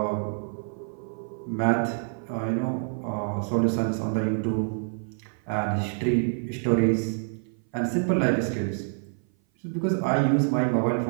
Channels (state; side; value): silent; left; 57 dB below the other